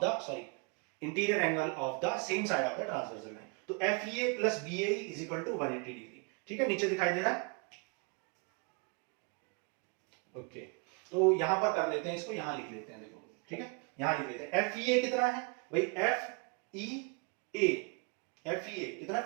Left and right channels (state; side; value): quieter; left; 31.4 dB